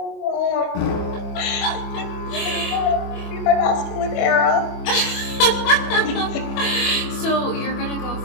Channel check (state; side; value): late; right; 25 ms